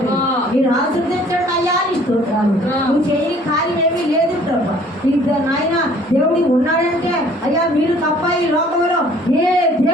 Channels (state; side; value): normal; both; correlation 0.55